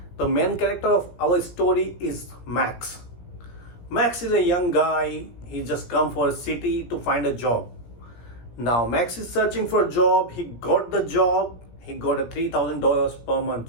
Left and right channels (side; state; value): right; late; 17 ms